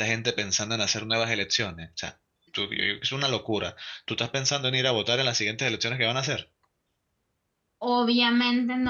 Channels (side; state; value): both; identical; correlation 1.00